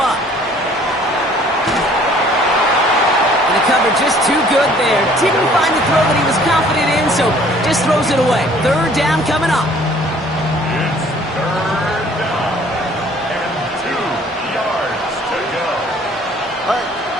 And the cover just too good there. Didn't find the throw that he was confident in, so just throws it away. Third down coming up. It's third down. And 2 yards to go.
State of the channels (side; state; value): both; normal; correlation 0.56